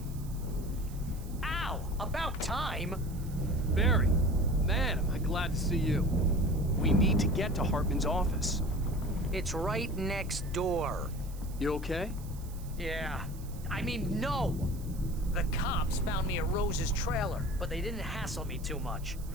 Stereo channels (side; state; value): right; noise; hiss, 20 dB below the sound